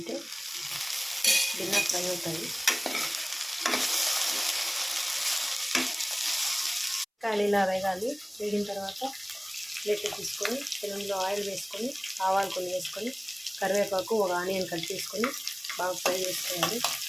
భిన్న ఫ్రై అవుతాయి. కాయలు ఇలా వేగాలి. వేగిన తర్వాత ప్లేట్ తీసుకొని పెనంలో ఆయిల్ వేసుకొని ఆవాలు కొన్ని వేసుకొని కరివేపాకు ఒక ఆనియన్ కట్ చేసుకొని బాగా ఫ్రై చేసుకోవాలి.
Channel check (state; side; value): identical; both; correlation 1.00